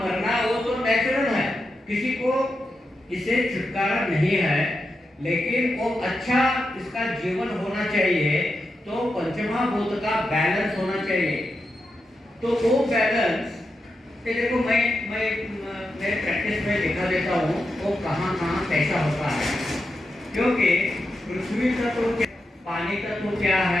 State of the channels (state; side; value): normal; both; correlation 0.87